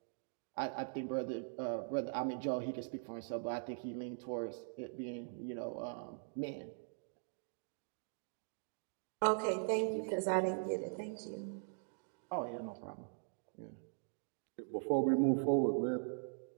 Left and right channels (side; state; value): left; silent; digital silence